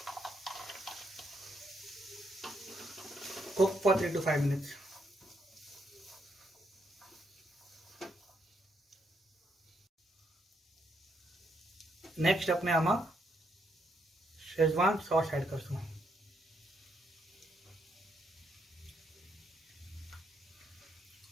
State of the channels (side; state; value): both; normal; correlation 0.76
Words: cook for 3 to 5 minutes. Next अपने आमा शेजवान सॉस ऐड करशुं.